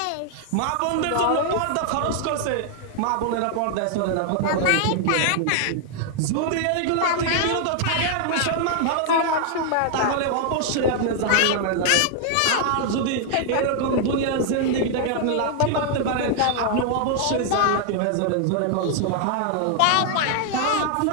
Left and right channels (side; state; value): both; different; correlation 0.00